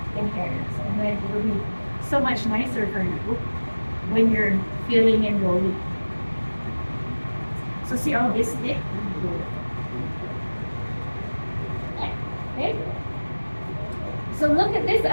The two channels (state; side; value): inverted; both; correlation -1.00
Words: tear. And then it will be so much nicer for you when you're filling and rolling. So see all this thick? Okay. So look at this